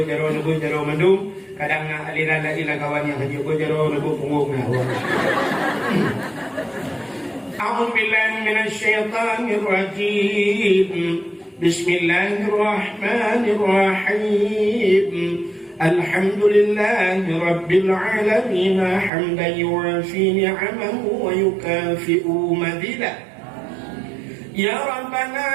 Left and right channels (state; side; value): drops out; left; at 19.1 s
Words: mendung, kadang aliran ilah kawan yang hanya berjaro punggung A'udzu billahi minasy syaithanir rajim. Bismillahirrahmanirrahim. Alhamdulillahi rabbil alamin hamdan yuwafi ni'amahu wa yukafi'u madidah. Ya